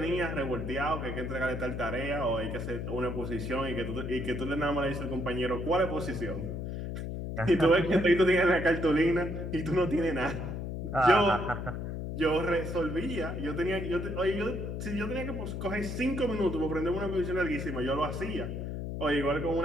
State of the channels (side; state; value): left; noise; hum, 5 dB below the sound